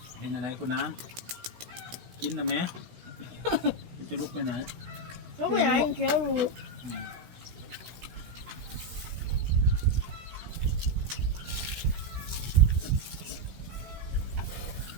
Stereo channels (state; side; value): late; left; 16 ms